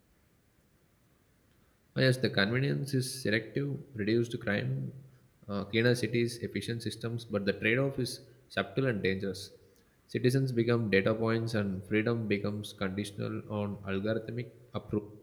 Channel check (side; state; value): both; identical; correlation 1.00